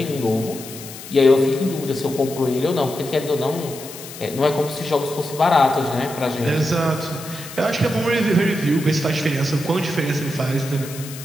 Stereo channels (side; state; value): left; noise; hiss, 13 dB below the sound